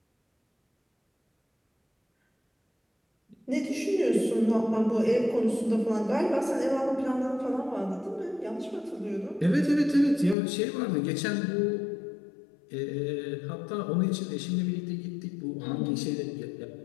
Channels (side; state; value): right; drops out; at 10.4 s